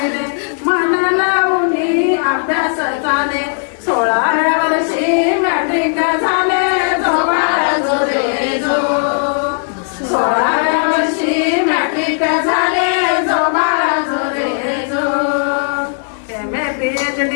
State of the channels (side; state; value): right; silent; 69 dB below the other